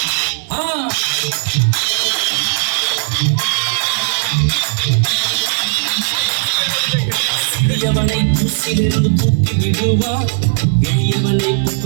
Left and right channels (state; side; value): silent; left; 56 dB below the other